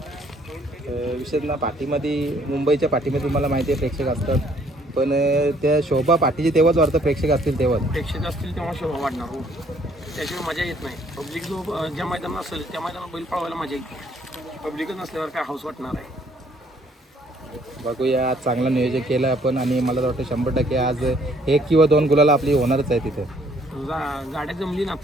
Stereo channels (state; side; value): normal; both; correlation 0.63